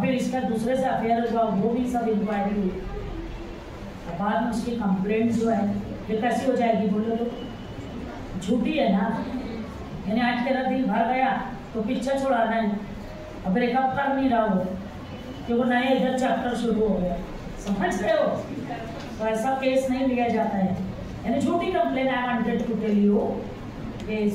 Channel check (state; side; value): identical; both; correlation 1.00